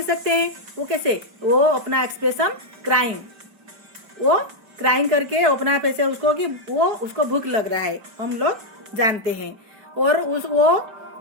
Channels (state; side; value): late; left; 4.7 ms